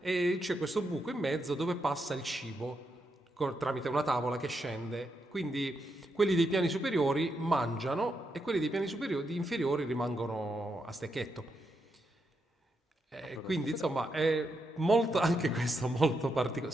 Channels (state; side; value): normal; both; correlation 0.82